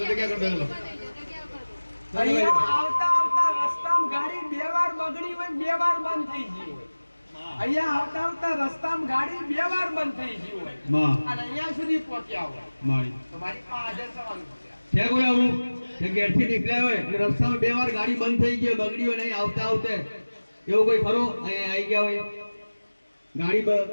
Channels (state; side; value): inverted; both; correlation -1.00